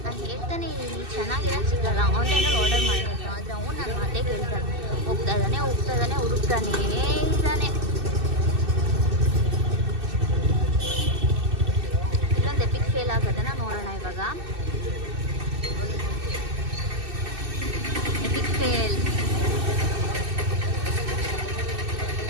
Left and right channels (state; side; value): late; left; 2.6 ms